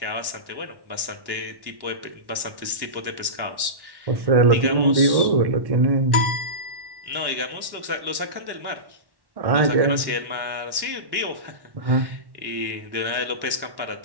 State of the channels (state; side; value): late; left; 1.1 ms